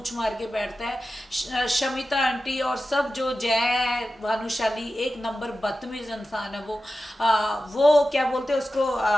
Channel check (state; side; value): normal; both; correlation 0.93